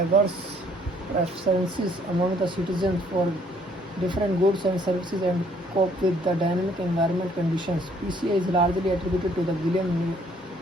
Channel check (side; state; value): both; normal; correlation 0.63